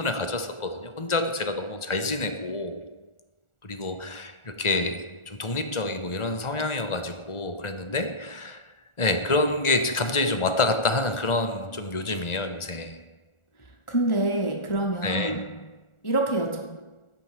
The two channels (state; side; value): late; right; 1.4 ms